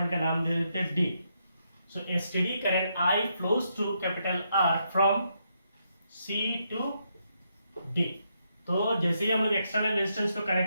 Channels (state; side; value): inverted; both; correlation -0.79